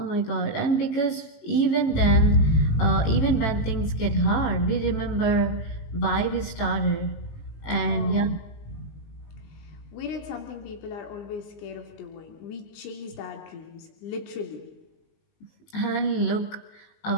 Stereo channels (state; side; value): late; right; 19 ms